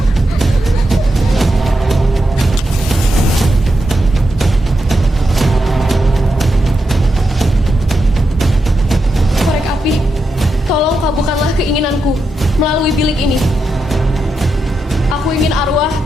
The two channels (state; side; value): normal; both; correlation 0.86